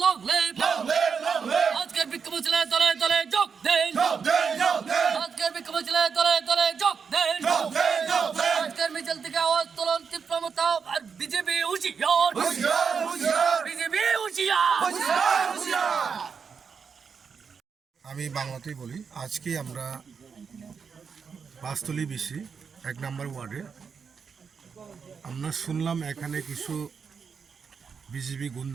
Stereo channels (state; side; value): quieter; left; 6.1 dB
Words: লং লিভ আজকের বিক্ষোভ মিছিলে দলে দলে যোগ দেন আজকের বিক্ষোভ মিছিলে দলে দলে যোগ দেন আজকের মিছিল থেকে আওয়াজ তোলন প্রমতা আর বিজেপি হুঁশিয়ার বিজেপি হুঁশিয়ার। আমি বাংলাতেই বলি। আজকে আমরা বাসতলী বিসি 1 নম্বর ওয়ার্ডে আমরা শুনলাম এখানে কিছু বিজেপি